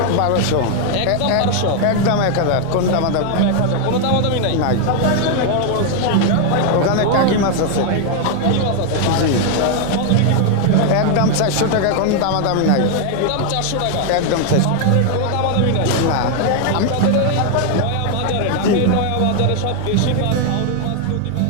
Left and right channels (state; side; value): different; both; correlation 0.00